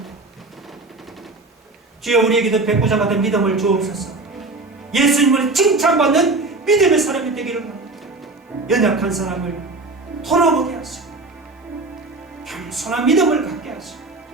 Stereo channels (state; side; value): quieter; left; 3.3 dB